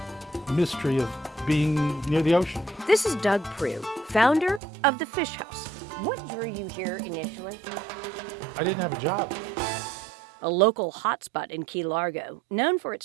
mystery of being near the ocean. This is Doug Prue, founder of The Fish House. What drew you here initially? I didn't have a job. A local hotspot in Key Largo, known for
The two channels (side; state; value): left; drops out; at 4.6 s